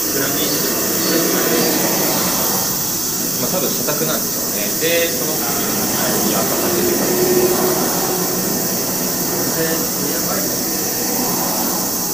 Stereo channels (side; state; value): left; noise; rumble, 21 dB below the sound